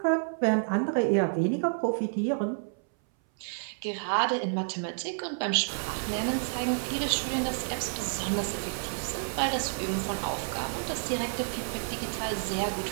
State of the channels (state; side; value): silent; left; 58 dB below the other